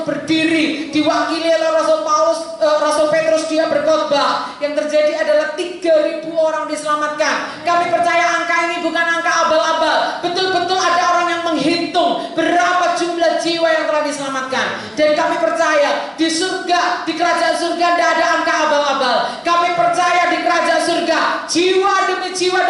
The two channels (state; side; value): identical; both; correlation 1.00